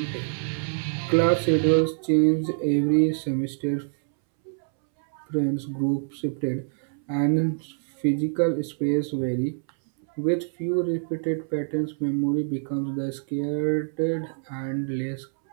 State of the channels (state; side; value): silent; left; 61 dB below the other